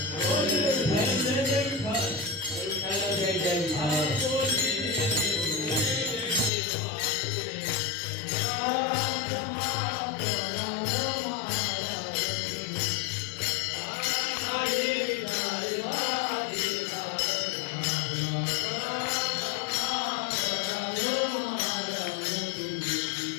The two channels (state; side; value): drops out; right; at 6.5 s